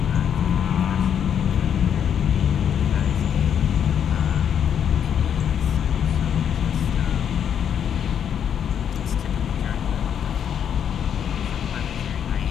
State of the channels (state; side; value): quieter; right; 8.5 dB